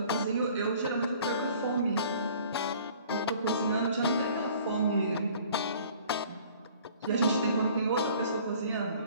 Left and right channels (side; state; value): both; inverted; correlation -0.52